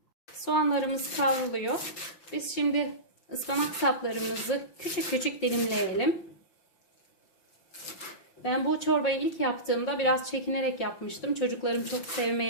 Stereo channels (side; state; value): right; late; 5.8 ms